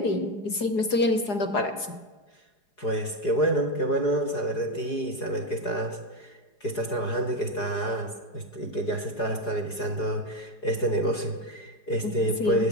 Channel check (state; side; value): late; right; 4.8 ms